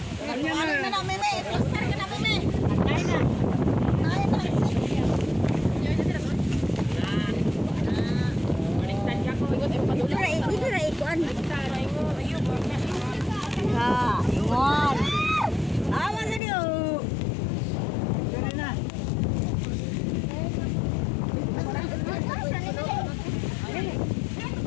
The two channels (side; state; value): right; drops out; at 16.4 s